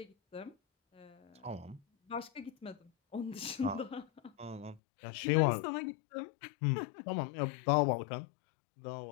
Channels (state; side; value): drops out; right; at 4.8 s